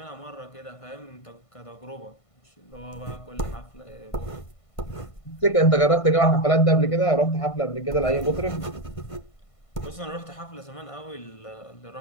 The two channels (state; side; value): late; right; 1.5 ms